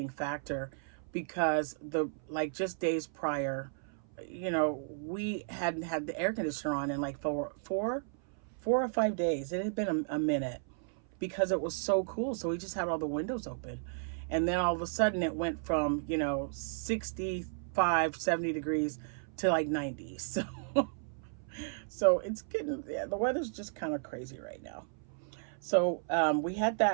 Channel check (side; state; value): left; silent; 55 dB below the other